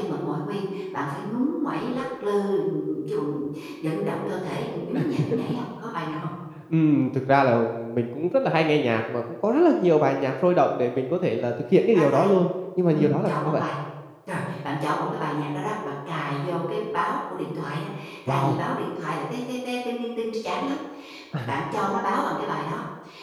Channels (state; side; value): identical; both; correlation 1.00